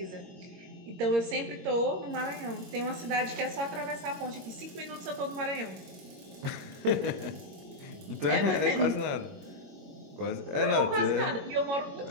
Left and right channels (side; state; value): left; late; 22 ms